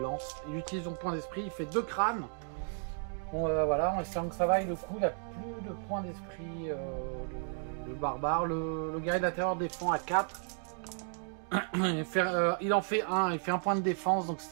lance. Il utilise son point d'esprit. Il fait 2 crânes. Bon, voilà, en espérant que ça vaille le coup. Il a plus de points d'esprit. Le barbare. Le guerrier de la terreur défend à 4. Il en fait 1. Il fait un point de défense. Donc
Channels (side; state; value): left; silent; 55 dB below the other